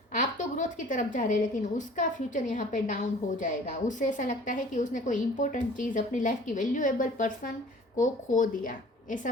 आप तो ग्रोथ की तरफ जा रहे हैं, लेकिन उसका फ्यूचर यहाँ पे डाउन हो जाएगा। उससे ऐसा लगता है कि उसने कोई इंपॉर्टेंट चीज़, अपनी लाइफ की वैल्यूएबल पर्सन को खो दिया, ऐसा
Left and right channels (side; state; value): both; normal; correlation 0.49